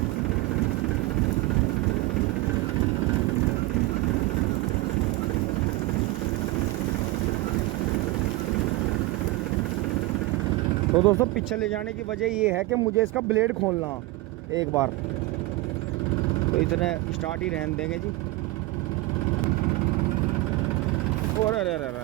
तो दोस्तों पीछे ले जाने की वजह ये है कि मुझे इसका ब्लेड खोलना एक बार, तो इतने स्टार्ट ही रहने देंगे जी। और अरे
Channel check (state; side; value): quieter; left; 19.5 dB